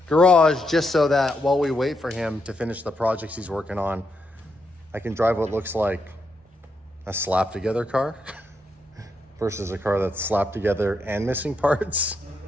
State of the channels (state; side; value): normal; both; correlation 0.80